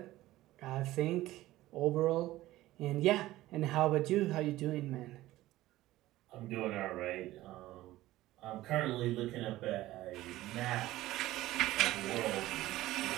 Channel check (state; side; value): quieter; left; 16.3 dB